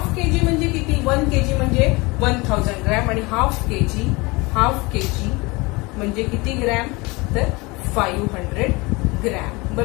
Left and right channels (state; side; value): quieter; right; 24.8 dB